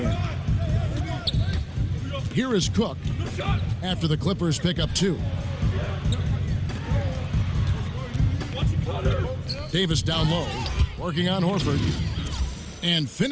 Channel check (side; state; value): both; identical; correlation 1.00